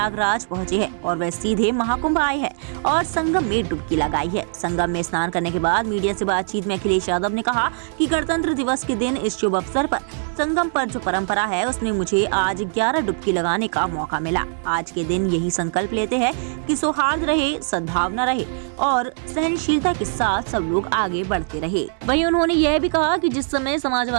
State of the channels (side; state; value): left; silent; digital silence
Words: पहुंचे हैं और वह सीधे महाकुंभ आए हैं और संगम में डुबकी लगाई है। संगम में स्नान करने के बाद मीडिया से बातचीत में अखिलेश यादव ने कहा कि गणतंत्र दिवस के दिन इस शुभ अवसर पर संगम पर जो परंपरा है उसमें मुझे आज 11 डुबकी लगाने का मौका मिला। आज के दिन यही संकल्प लेते हैं कि सौहार्द रहे, सद्भावना रहे और सहनशीलता के साथ सब लोग आगे बढ़ते रहे। वहीं उन्होंने यह भी कहा कि जिस समय